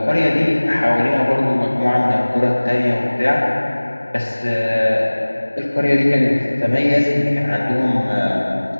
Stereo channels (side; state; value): both; inverted; correlation -1.00